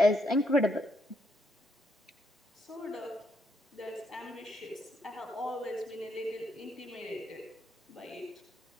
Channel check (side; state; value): both; normal; correlation 0.76